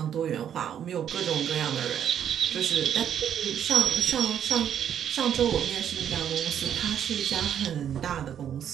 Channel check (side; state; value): left; quieter; 9.3 dB